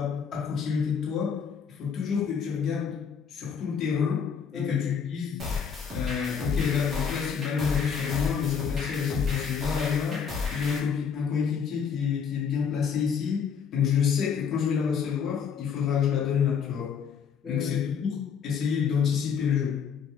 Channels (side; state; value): right; quieter; 6.8 dB